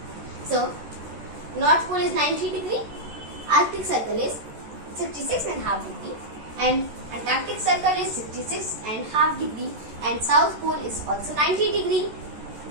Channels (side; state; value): left; late; 14 ms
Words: So, North Pole is 90 degree, Arctic Circle is 66.5 degree and Antarctic Circle is 66.5 degree and South Pole is also 90 degree.